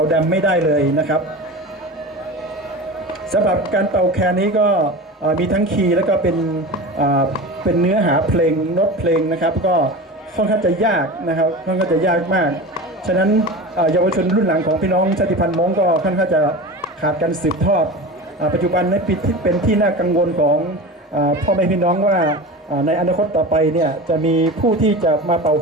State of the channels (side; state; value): both; normal; correlation 0.30